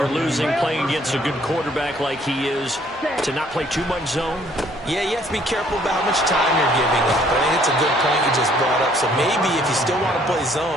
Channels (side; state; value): both; normal; correlation 0.62